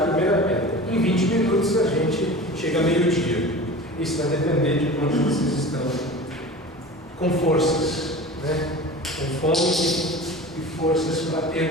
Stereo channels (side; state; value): both; normal; correlation 0.36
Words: a primeira pedra. Em 20 minutos a gente chega a meio-dia. Isso vai depender de quanto vocês estão com forças, né? Com fome e forças para